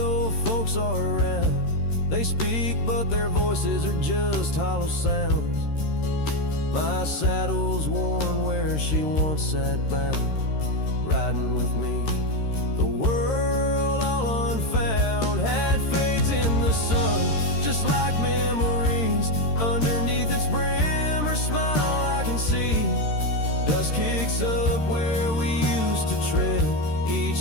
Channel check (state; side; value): late; right; 13 ms